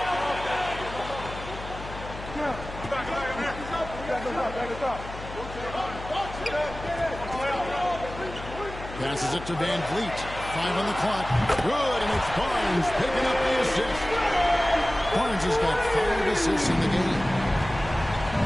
Passes it to Van Vliet. 5 on the clock. Good, and it's Barnes picking up the assist. Barnes has got 5 assists in the game.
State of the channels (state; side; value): noise; left; hum, 12 dB below the sound